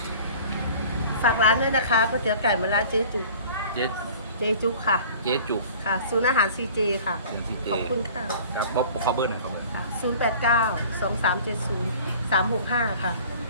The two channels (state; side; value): inverted; both; correlation -0.46